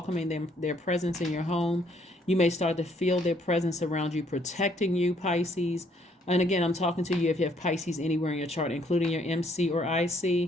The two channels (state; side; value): normal; both; correlation 0.67